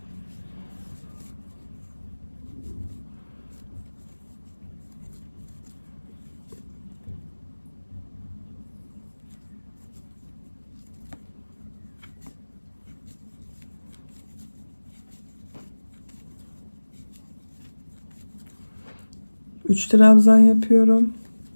Üç trabzan yapıyorum.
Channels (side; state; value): both; inverted; correlation -1.00